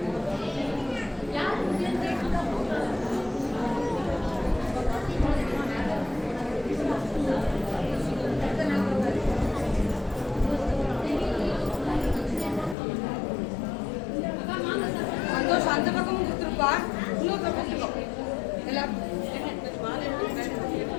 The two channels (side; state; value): right; drops out; at 12.8 s